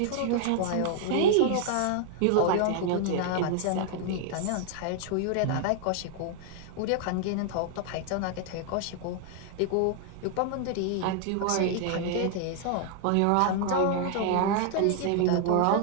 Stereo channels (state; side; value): different; both; correlation 0.00